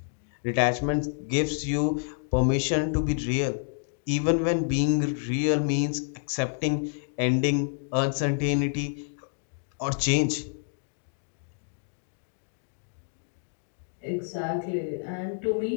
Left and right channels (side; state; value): right; silent; digital silence